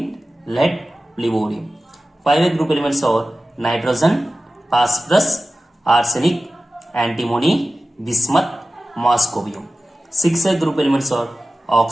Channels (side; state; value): both; normal; correlation 0.95